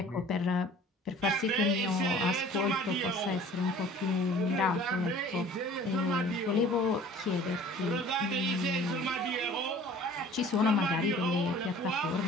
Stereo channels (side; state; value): both; normal; correlation 0.48